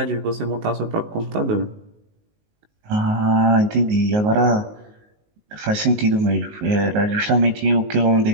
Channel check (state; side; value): late; left; 19 ms